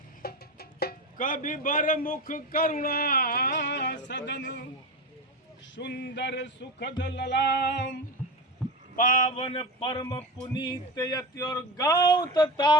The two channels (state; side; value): normal; both; correlation 0.23